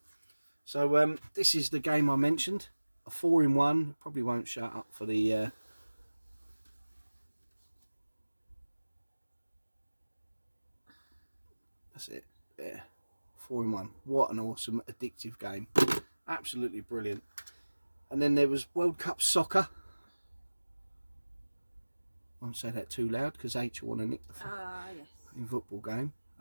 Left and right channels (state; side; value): inverted; both; correlation -1.00